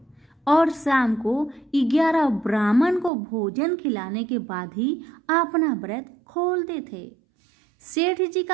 और शाम को 11 ब्राह्मण को भोजन खिलाने के बाद ही अपना व्रत खोलते थे। सेठ जी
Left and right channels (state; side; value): drops out; left; at 3.1 s